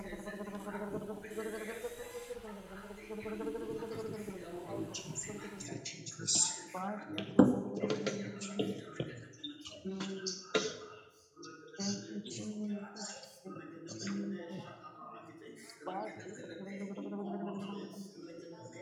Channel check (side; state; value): both; identical; correlation 1.00